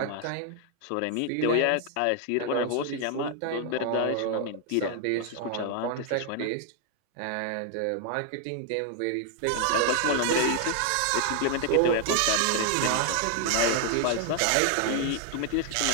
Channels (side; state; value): both; different; correlation 0.00